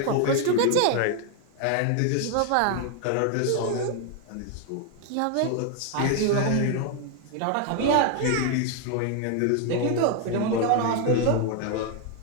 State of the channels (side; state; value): both; different; correlation 0.01